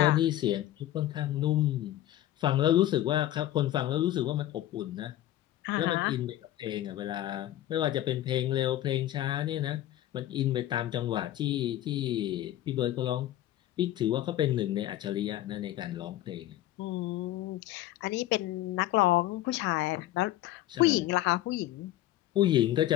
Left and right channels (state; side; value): quieter; right; 14.0 dB